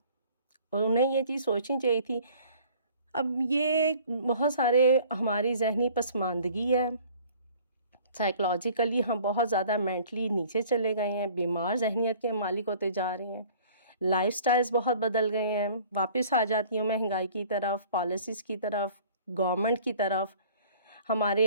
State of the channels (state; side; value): inverted; both; correlation -0.52